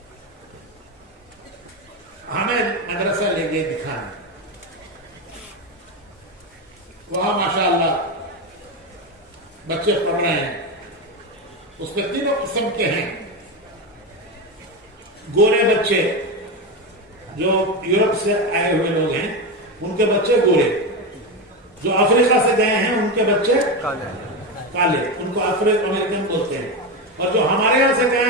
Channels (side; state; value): both; normal; correlation 0.15